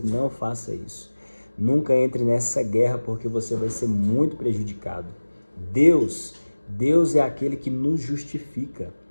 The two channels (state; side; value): inverted; both; correlation -1.00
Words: Não faça isso. Nunca entre nessa guerra, porque você vai ser muito prejudicado. Deus é aquele que nos justifica.